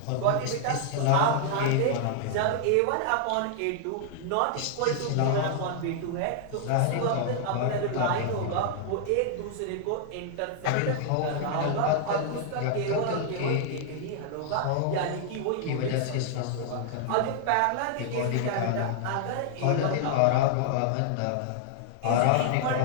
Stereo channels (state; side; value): different; both; correlation -0.01